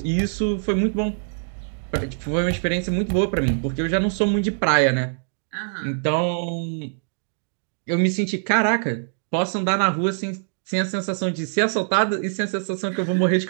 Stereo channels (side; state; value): left; silent; digital silence